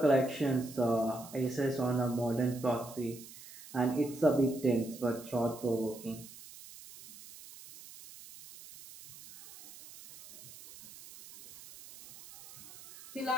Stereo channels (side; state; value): right; noise; hiss, 17 dB below the sound